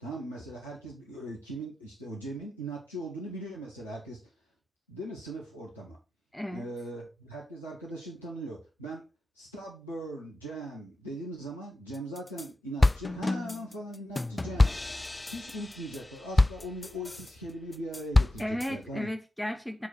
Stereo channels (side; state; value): both; normal; correlation 0.92